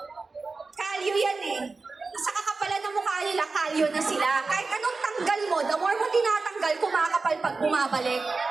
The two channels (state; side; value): quieter; left; 4.0 dB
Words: kalyo yan eh. Sa kakapalan ng mukha nila, kalyo na sila. Kahit anong tanggal mo, the more mo tinatanggal, kumakapal pag bumabalik.